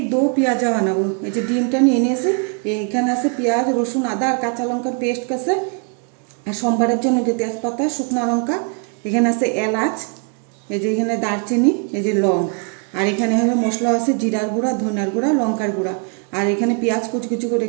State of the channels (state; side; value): quieter; left; 38.2 dB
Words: দো পেঁয়াজা বানাবো। এই যে ডিমটা নিয়ে নিয়েছি, এখানে আছে পেঁয়াজ, রসুন, আদা আর কাঁচা লঙ্কার পেস্ট আছে। আর সোমবারের জন্য যে তেজপাতা, শুকনো লঙ্কা, এখানে আছে এলাচ, এই যে এখানে দারচিনি, এই যে লং, আর এখানে হলো মশলা আছে জিরার গুঁড়া, ধনিয়ার গুঁড়া, লঙ্কার গুঁড়া। আর এখানে পেঁয়াজ কুচি কুচি করে